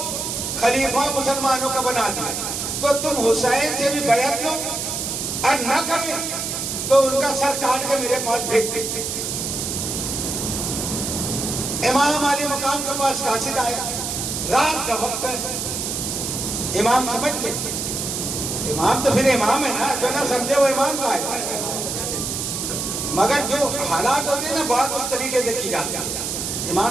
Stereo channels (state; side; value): noise; right; hiss, 3 dB below the sound